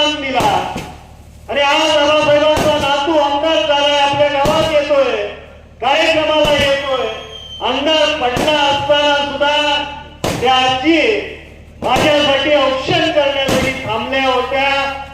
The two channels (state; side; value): identical; both; correlation 1.00